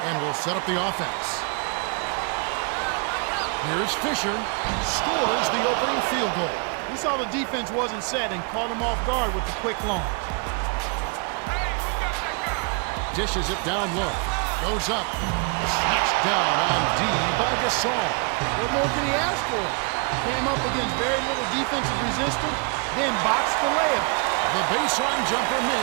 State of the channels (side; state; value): left; quieter; 35.5 dB